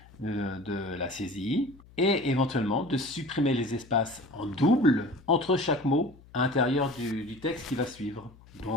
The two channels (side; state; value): left; noise; hum, 24 dB below the sound